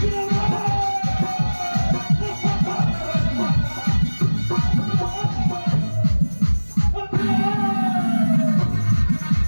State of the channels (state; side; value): inverted; both; correlation -1.00